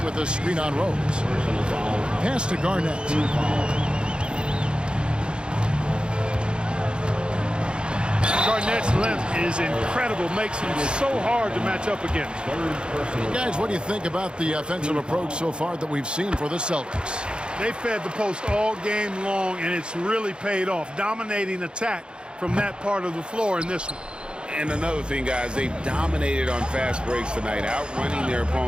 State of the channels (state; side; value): late; left; 0.052 ms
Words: with a screen on Rose. Pass to Garnett. Garnett's length is incredible. Makes him so hard to match up against. Guys, what do you think about the offensive approach so far that we've seen for the Celtics? They fed the post all game long, and it's really paid off. Dominating attack from that part of the floor in this one. And another thing, guys, they've dominated on fast breaks tonight, outrunning their